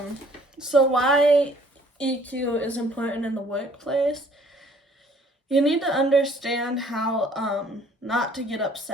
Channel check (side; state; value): both; normal; correlation 0.58